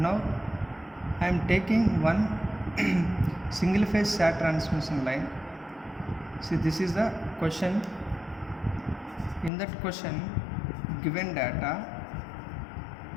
I am taking one single phase SAT transmission line. See, this is the question. In that question, given data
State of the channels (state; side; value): drops out; right; at 9.5 s